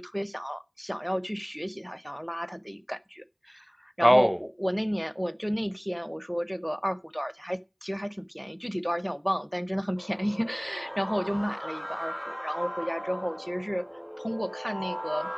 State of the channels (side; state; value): both; identical; correlation 1.00